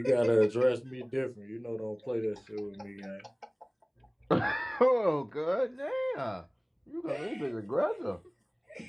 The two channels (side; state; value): both; identical; correlation 1.00